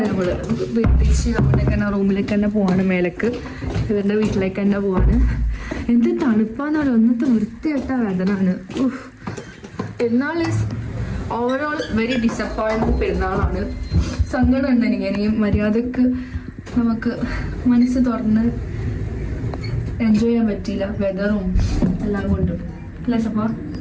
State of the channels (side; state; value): both; identical; correlation 1.00